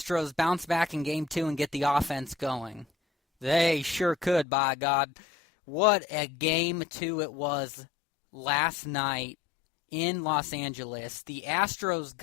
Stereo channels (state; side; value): drops out; right; at 4.5 s